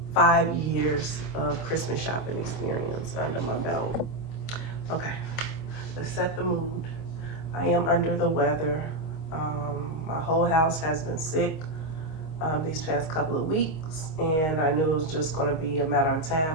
years of Christmas shopping experience under my belt. Okay, let's set the mood. I am under the weather. My whole house has been sick these past couple of weeks, and I knew it was just going to be a matter of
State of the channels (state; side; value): late; right; 25 ms